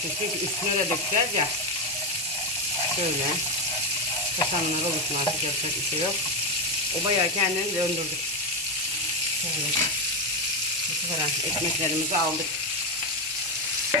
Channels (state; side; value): normal; both; correlation 0.10